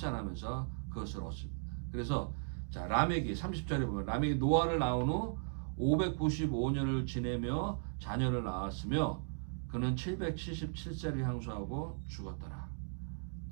그것을 얻습니다. 그래서 자 라멕이 30절에 보면 라멕이 노아를 낳은 후 595년을 지내며 자녀를 낳았으며 그는 777세를 향수하고 죽었더라.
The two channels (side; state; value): left; silent; digital silence